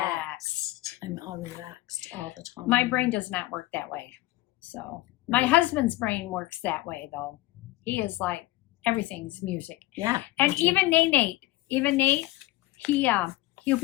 I'm all relaxed all the time. My brain does not work that way. So my husband's brain works that way though. He is like everything's music. Yeah. And me too. even Nate, he'll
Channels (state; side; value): quieter; right; 18.1 dB